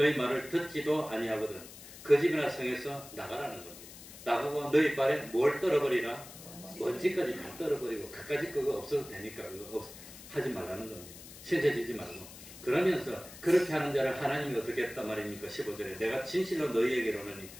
말을 듣지도 아니하거든 그 집이나 성에서 나가라는 겁니다. 나가고 너희 발에 뭘 떨어버리라? 먼지까지 다 떨어버리고 그까짓 그거 없어도 되니까 그거 하지 말라는 겁니다. 신세지지 말고. 그러면서 그렇게 하는 자를 하나님이 어떻게 했단 말입니까? 15절에 내가 진실로 너희에게로는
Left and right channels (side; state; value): left; noise; hiss, 16 dB below the sound